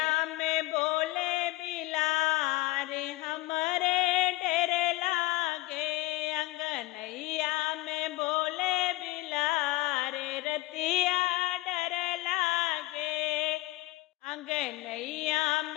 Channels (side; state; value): right; quieter; 19.5 dB